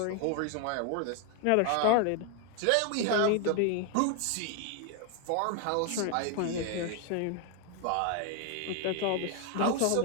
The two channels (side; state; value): both; different; correlation 0.01